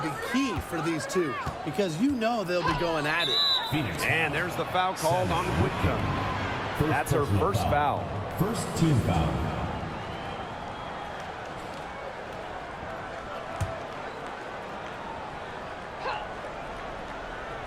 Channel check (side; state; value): both; identical; correlation 1.00